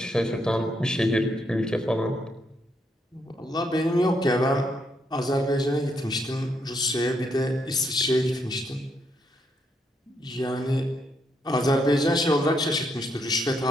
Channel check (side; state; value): both; normal; correlation 0.76